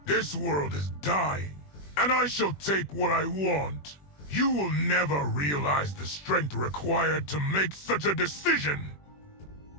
This world is dying, and I shall take what I want. You will never realize the strength required to make such a decision.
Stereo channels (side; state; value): right; late; 21 ms